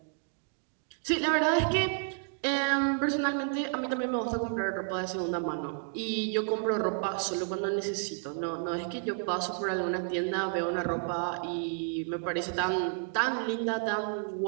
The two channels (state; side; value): silent; left; 57 dB below the other